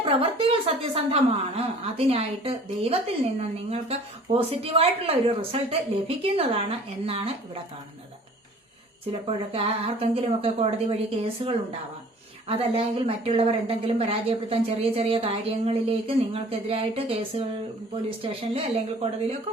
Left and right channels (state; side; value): normal; both; correlation 0.49